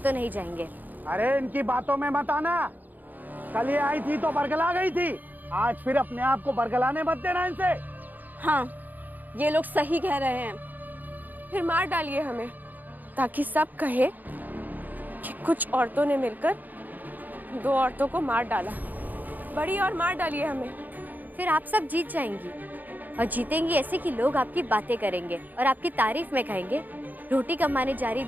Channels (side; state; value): left; late; 0.084 ms